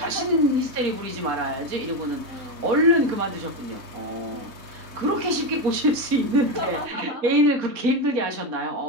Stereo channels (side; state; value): left; late; 4.2 ms